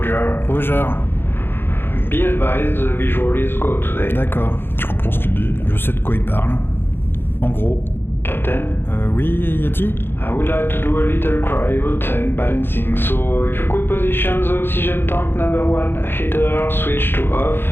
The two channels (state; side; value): late; right; 0.10 ms